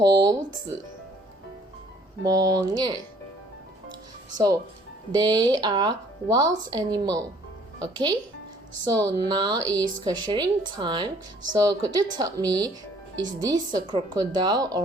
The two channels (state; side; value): normal; both; correlation 0.58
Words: 子. Monyet. So they are wild animal. Okay? So now is questioning time. So could you tell me, is this a crocodile